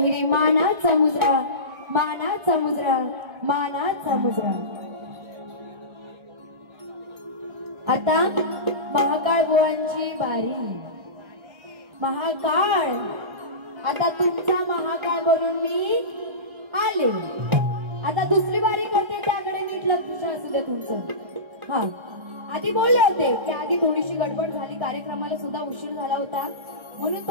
मानाचा मुजरा, मानाचा मुजरा, मानाचा मुजरा। आता महाकाळ बुवांची बारी। महाकाळ, आता तुमचा महाकाळ बनून मी आले। आता दुसरी बारी करते, त्याकडे नीट लक्ष असू दे तुमचं। हा, आधी बोलले होते की आधी थोडीशी गडबड झाली, कार्यक्रमाला सुद्धा उशीर झाला होता, म्हणून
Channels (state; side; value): late; left; 1.3 ms